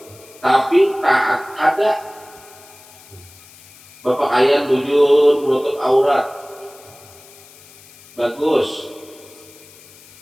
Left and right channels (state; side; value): noise; left; hiss, 23 dB below the sound